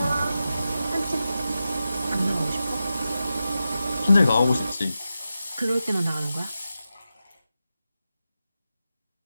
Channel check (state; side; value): inverted; both; correlation -0.91